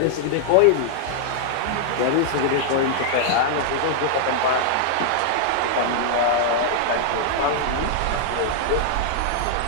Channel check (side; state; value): both; different; correlation -0.01